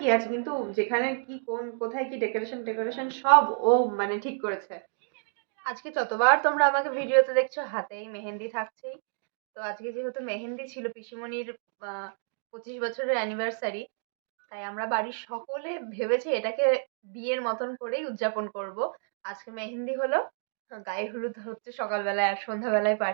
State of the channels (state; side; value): silent; left; digital silence